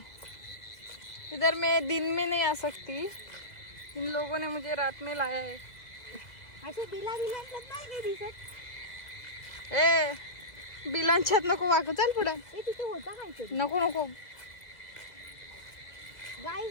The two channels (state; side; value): late; right; 2.0 ms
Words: इधर मैं दिन में नहीं आ सकती. इन लोगों ने मुझे रात में लाया है. असे बिला बिलांच्यात नाही काही दिसत. ए बिलांच्यात नको वाकू. चल पुढे. हे तिथे होता काहीतरी. नको नको.